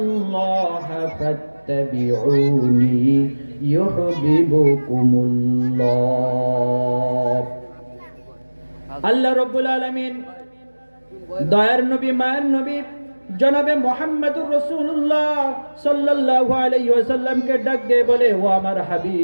ফাত্তাবিউনি ইউহিব্বুকুমুল্লাহ। আল্লাহ রাব্বুল আলামিন দয়ার নবী, মায়ের নবী জনাবে মুহাম্মদুর রাসূলুল্লাহ সাল্লাল্লাহু আলাইহি ওয়াসাল্লামকে ডাক দিয়ে বলে, ও আমার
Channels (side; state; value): both; inverted; correlation -1.00